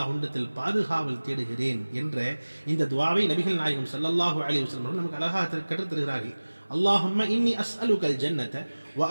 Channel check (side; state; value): both; inverted; correlation -1.00